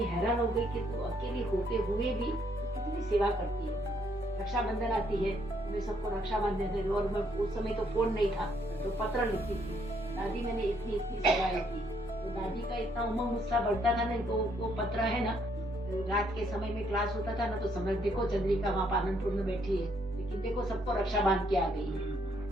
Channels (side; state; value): both; normal; correlation 0.70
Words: हैरान हो गई कि तो अकेली होते हुए भी कितनी सेवा करती है। रक्षाबंधन आती है, मैं सबको रक्षा बांधने थे, और मैं उस समय तो फोन नहीं था तो पत्र लिखती थी, दादी मैंने इतनी सेवाएं की। तो दादी का इतना उमंग उत्साह बढ़ता था ना, तो वो पत्र है ना, रात के समय में क्लास होता था ना, तो समझ देखो चंद्रिका वहाँ पालनपुर में बैठी है, लेकिन देखो सबको रक्षा बांध के आ गई है,